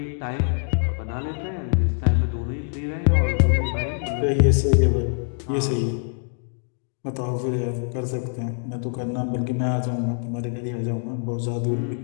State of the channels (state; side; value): silent; right; 62 dB below the other